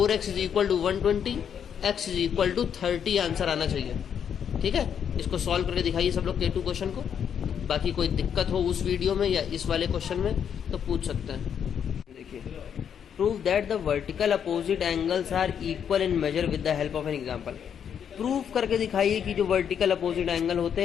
is equal to 120, x is equal to 30 answer आना चाहिए। ठीक है, इसको सॉल्व करके दिखाइए सब लोग K2 क्वेश्चन को। बाकी कोई दिक्कत हो उस वीडियो में या इस वाले क्वेश्चन में तो पूछ सकते हैं। देखिए, prove that the vertical opposite angles are equal in measure with the help of an example. Prove करके दिखाइए कि जो वर्टिकल अपोजिट एंगल होते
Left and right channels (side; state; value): right; quieter; 8.2 dB